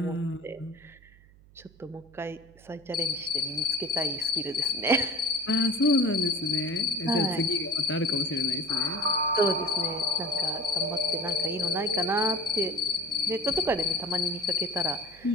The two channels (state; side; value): noise; right; hum, 25 dB below the sound